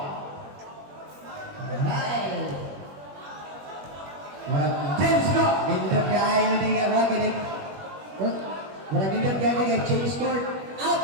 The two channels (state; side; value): late; left; 21 ms